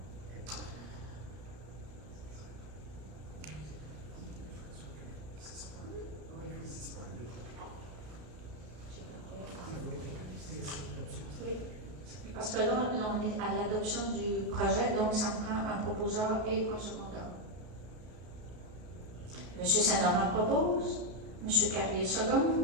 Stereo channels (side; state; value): left; late; 33 ms